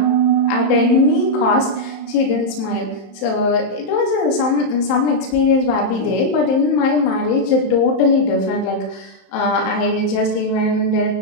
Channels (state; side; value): late; right; 27 ms